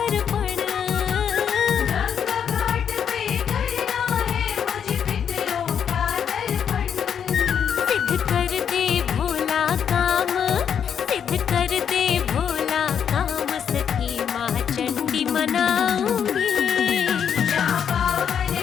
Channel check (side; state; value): right; quieter; 7.9 dB